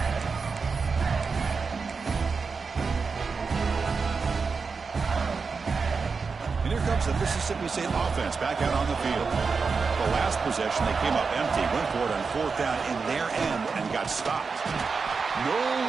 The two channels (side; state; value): left; quieter; 4.9 dB